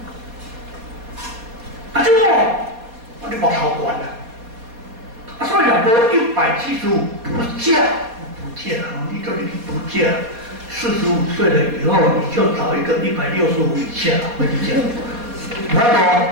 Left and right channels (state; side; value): late; left; 4.2 ms